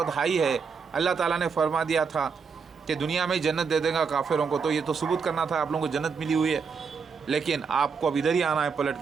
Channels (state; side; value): quieter; left; 5.6 dB